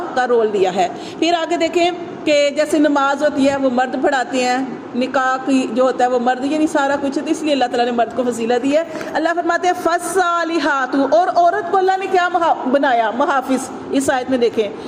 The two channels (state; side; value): identical; both; correlation 1.00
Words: کا رول دیا ہے۔ پھر آگے دیکھیں کہ جیسے نماز ہوتی ہے وہ مرد پڑھاتے ہیں، نکاح کی جو ہوتا ہے وہ مرد، یعنی سارا کچھ ہوتا ہے، اس لیے اللہ تعالیٰ نے مرد کو فضیلت دی ہے۔ اللہ فرماتے ہیں فالصالحات، اور عورت کو اللہ نے کیا بنایا؟ محافظ۔ اس آیت میں دیکھیں